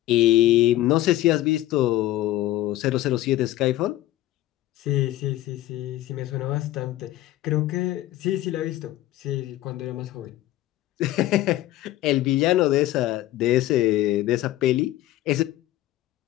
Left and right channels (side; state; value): right; quieter; 15.1 dB